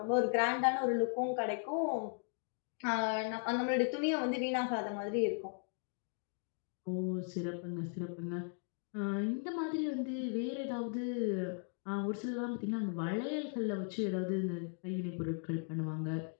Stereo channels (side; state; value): right; silent; 53 dB below the other